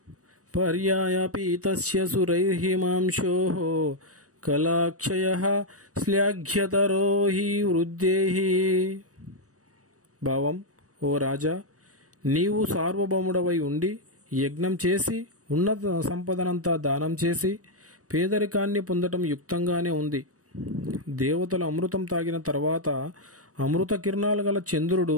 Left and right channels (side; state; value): left; late; 0.66 ms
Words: పర్యాయపీతస్య సురైర్హిమాంశో కళాక్షయః శ్లాఘ్యతరో హి వృద్ధేః. భావం: ఓ రాజా, నీవు సార్వభౌముడవై ఉండి యజ్ఞం చేసి ఉన్నత సంపదనంతా దానం చేసి పేదరికాన్ని పొందటం యుక్తంగానే ఉంది. దేవతలు అమృతం తాగిన తర్వాత అమృత కిరణాలు గల